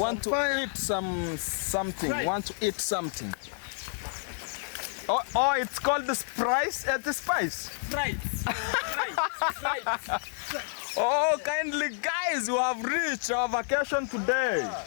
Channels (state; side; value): silent; right; digital silence